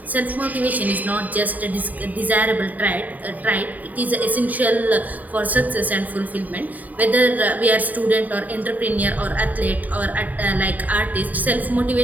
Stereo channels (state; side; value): late; left; 0.078 ms